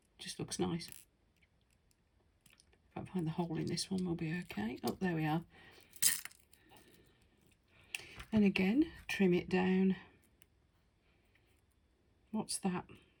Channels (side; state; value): both; identical; correlation 1.00